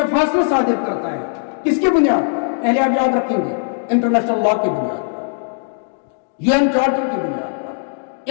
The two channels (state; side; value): silent; right; digital silence